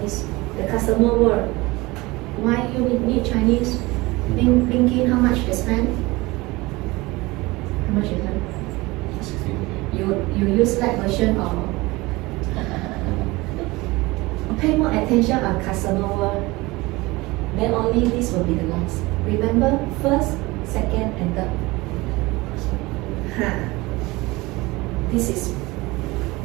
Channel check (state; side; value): quieter; left; 21.9 dB